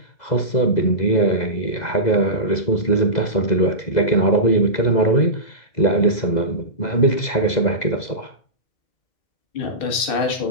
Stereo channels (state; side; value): late; right; 2.0 ms